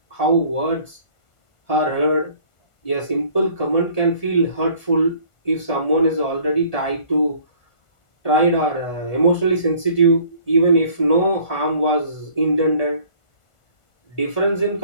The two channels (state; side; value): late; right; 1.4 ms